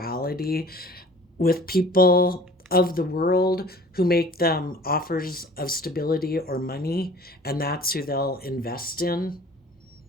with people of the world who make them offers of stability or money, and that's who they'll invest in.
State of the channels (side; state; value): both; normal; correlation 0.48